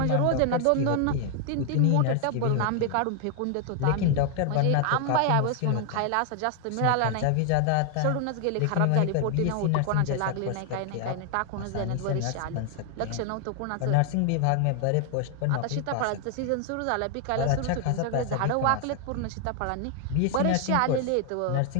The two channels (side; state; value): both; different; correlation 0.00